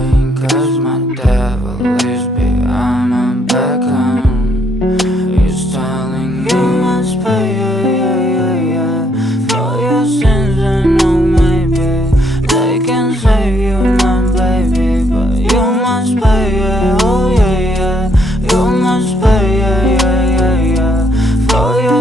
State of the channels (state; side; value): normal; both; correlation 0.72